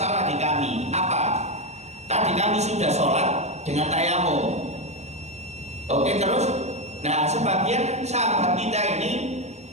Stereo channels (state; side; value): late; left; 0.32 ms